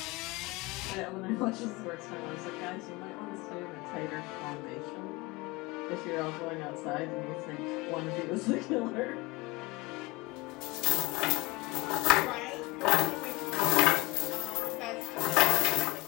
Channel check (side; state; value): right; quieter; 22.8 dB